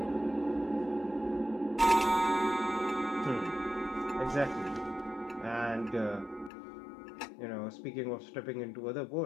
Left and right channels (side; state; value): right; drops out; at 6.5 s